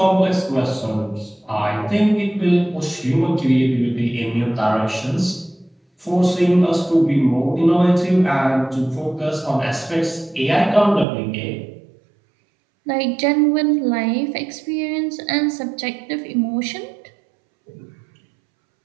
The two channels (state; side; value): drops out; left; at 11.1 s